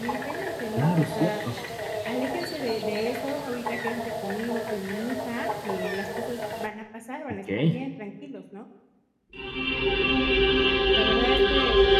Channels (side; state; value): both; identical; correlation 1.00